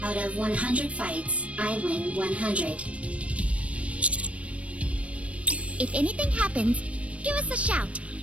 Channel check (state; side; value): late; left; 0.063 ms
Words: Out of 100 fights, I win 100. If anything happens, give us a shout.